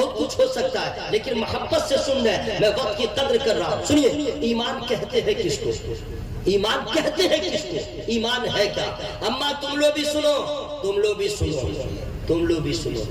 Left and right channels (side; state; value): both; identical; correlation 1.00